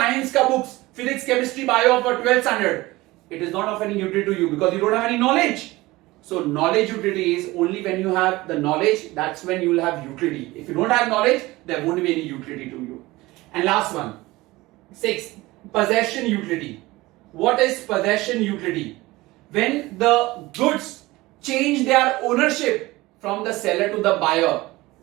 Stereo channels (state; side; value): quieter; left; 19.9 dB